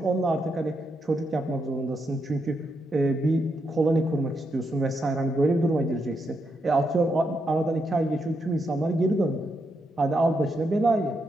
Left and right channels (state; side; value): normal; both; correlation 0.81